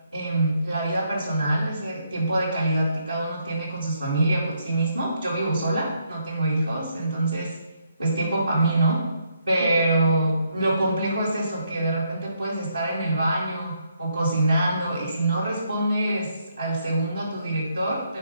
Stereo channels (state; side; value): inverted; both; correlation -0.74